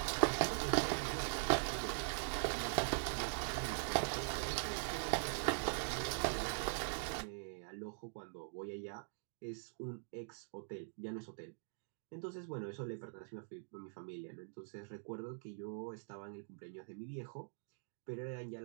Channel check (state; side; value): silent; left; digital silence